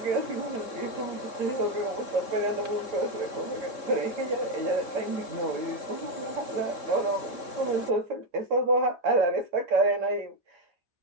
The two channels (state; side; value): late; left; 3.6 ms